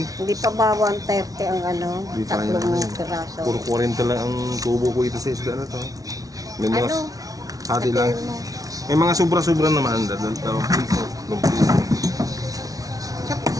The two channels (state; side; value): late; left; 0.18 ms